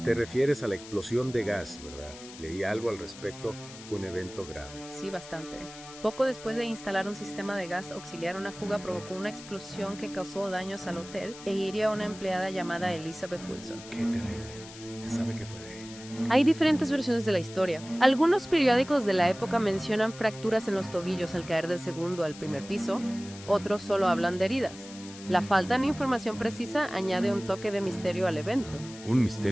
Te refieres a la explosión de gas, ¿verdad? Leí algo al respecto. Fue un evento grave. Sí, bastante. Poco después de instalar un sistema de gas auxiliar, una fuga provocó una explosión que causó daños al hotel e hirió a una empleada llamada Elizabeth Wilson. Qué terrible. ¿Se sabe qué fue de ella? Hay diferentes versiones de la historia. Algunos periódicos de la época mencionan fracturas en los tobillos al caer del segundo al primer piso, otros solo hablan de heridas. La falta de información precisa añade un toque de misterio al evento. Un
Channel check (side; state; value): left; noise; hiss, 16 dB below the sound